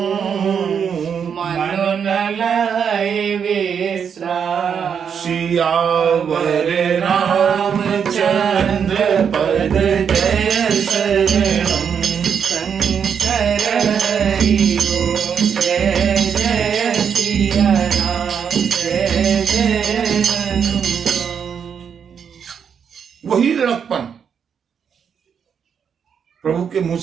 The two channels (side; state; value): left; quieter; 7.3 dB